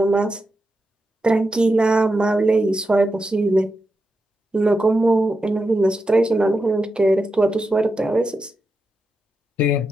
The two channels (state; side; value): normal; both; correlation 0.88